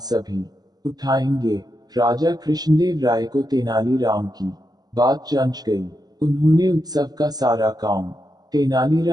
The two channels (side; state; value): left; late; 0.19 ms